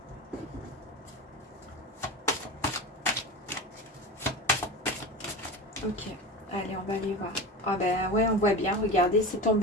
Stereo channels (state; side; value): normal; both; correlation 0.26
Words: Ok, allez, on va aller voir. Ah ben ouais, on voit bien, regardez, c'est